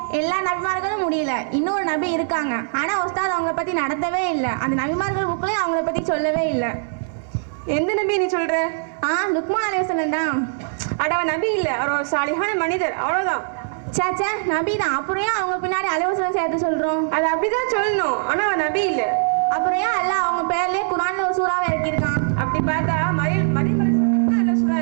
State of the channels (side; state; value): left; silent; digital silence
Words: எல்லா நபிமார்களும் முடியல. இன்னொரு நபி இருக்காங்க, ஆனா உஸ்தாத் அவங்கள பத்தி நடத்தவே இல்லை. அந்த நபிமார்கள் புக்லயும் அவங்கள பத்தி சொல்லவே இல்லை. எந்த நபி நீ சொல்ற? லுக்மான் அலைஹிஸ்ஸலாம் தான். அட நபி இல்ல, அவர் ஒரு சாலிஹான மனிதர், அவ்வளவுதான். சேச்சே, நபி தான். அப்புறம் ஏன் அவங்க பின்னாடி அலைஹிஸ்ஸலாம் சேர்த்து சொல்றோம்? அது அப்படிதான் சொல்லணும், ஆனா நபி இல்ல. அப்புறம் ஏன் அல்லாஹ் அவங்க பேர்லயே குர்ஆன்ல ஒரு சூறாவை இறக்கியிருக்கான்? அப்படி பார்த்தா மரியம் சூரா